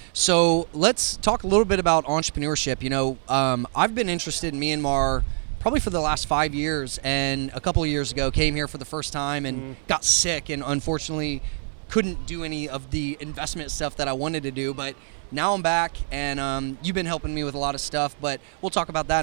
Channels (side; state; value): left; silent; 62 dB below the other